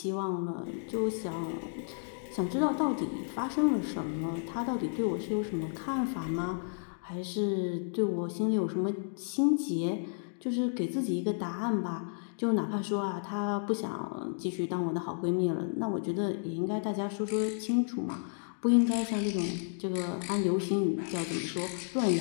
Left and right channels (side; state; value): right; silent; digital silence